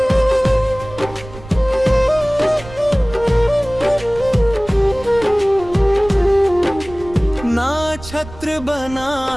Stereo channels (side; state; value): right; noise; rumble, 16 dB below the sound